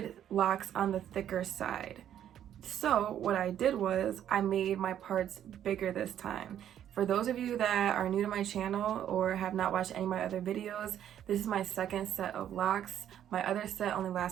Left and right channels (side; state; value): left; quieter; 10.4 dB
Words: locks on the thicker side. So what I did was I made my parts bigger this time. For those of you that are new to my channel or have not watched any of my other videos, this is my second set of locks. My other set only